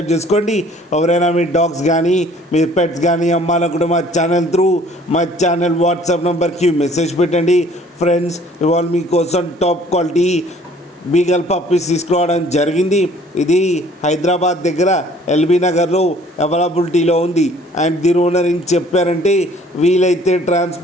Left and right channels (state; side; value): normal; both; correlation 0.55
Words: చేసుకోండి. ఎవరైనా మీ డాగ్స్ కానీ మీ పెట్స్ కానీ అమ్మాలనుకుంటే మా ఛానల్ త్రూ మా ఛానల్ వాట్సాప్ నెంబర్కి మెసేజ్ పెట్టండి. ఫ్రెండ్స్, ఇవాళ మీకోసం టాప్ క్వాలిటీ బీగల్ పప్పీస్ తీసుకురావడం జరిగింది. ఇది హైదరాబాద్ దగ్గర ఎల్బీ నగర్లో అవైలబిలిటీలో ఉంది. అండ్ దీని ఓనర్ ఏం చెప్పారంటే, వీలైతే